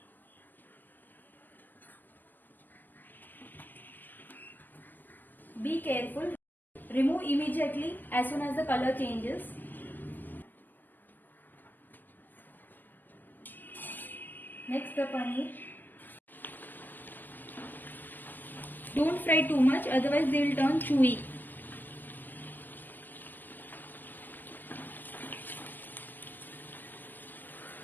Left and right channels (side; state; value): right; late; 0.087 ms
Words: Be careful. Remove immediately as soon as the color changes. Next, the paneer. Don't fry too much, otherwise they will turn chewy.